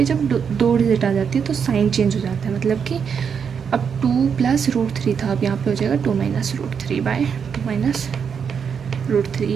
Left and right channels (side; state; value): left; quieter; 6.8 dB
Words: जब 2 डिजिट आ जाती है तो साइन चेंज हो जाता है, मतलब कि अब 2 + √3 था, अब यहाँ पे हो जाएगा 2 - √3/2 - √3,